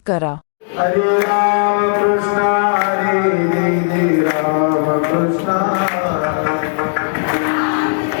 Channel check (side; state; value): right; silent; 61 dB below the other